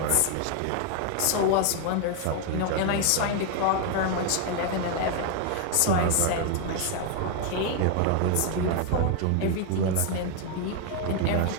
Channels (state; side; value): different; both; correlation 0.00